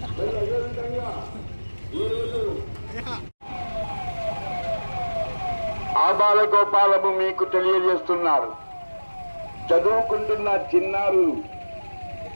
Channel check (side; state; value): both; inverted; correlation -1.00